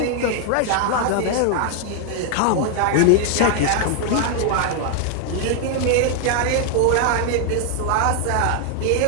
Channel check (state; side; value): different; both; correlation 0.00